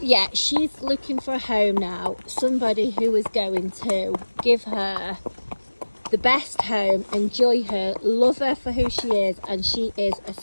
yeah, she's looking for a home now. Somebody who is going to give her the best home, enjoy her, love her for who she is, and she is a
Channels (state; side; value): inverted; both; correlation -1.00